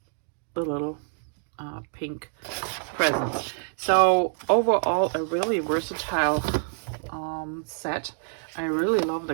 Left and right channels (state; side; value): silent; left; 60 dB below the other